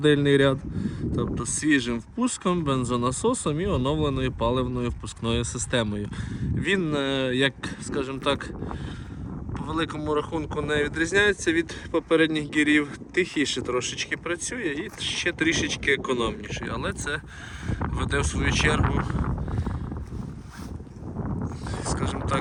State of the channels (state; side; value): identical; both; correlation 1.00